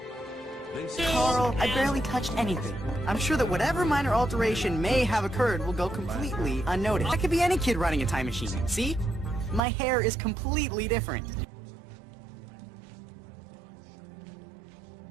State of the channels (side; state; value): left; drops out; at 9.6 s